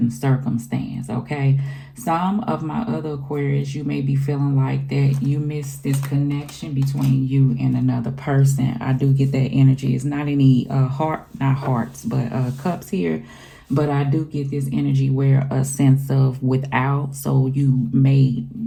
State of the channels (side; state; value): both; identical; correlation 1.00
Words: circumstance. Okay, some of my other Aquarius, you may be feeling like that you miss this connection between you and another person. I do get that energy. It's not any not hearts, but cups here, but I do get this energy where a sense of without. So you may